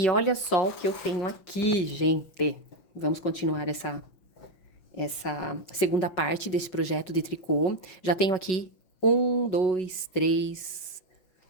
olha só o que eu tenho aqui, gente. Vamos continuar essa segunda parte desse projeto de tricô. Já tenho aqui um, dois, três,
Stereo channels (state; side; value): late; right; 5.4 ms